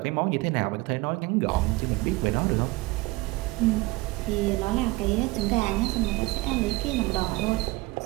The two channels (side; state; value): left; quieter; 22.1 dB